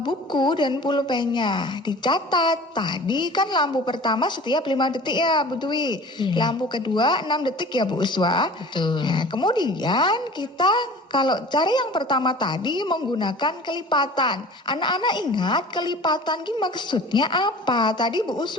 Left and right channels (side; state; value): both; normal; correlation 0.42